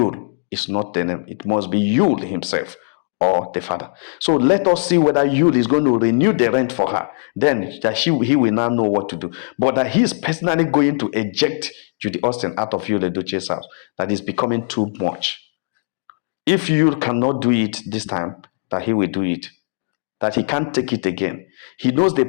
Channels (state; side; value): silent; right; digital silence